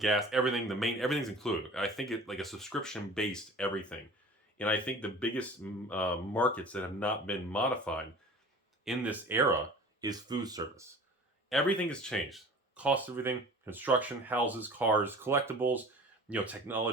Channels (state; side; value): normal; both; correlation 0.42